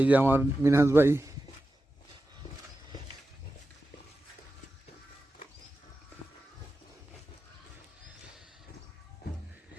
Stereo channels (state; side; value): normal; both; correlation 0.92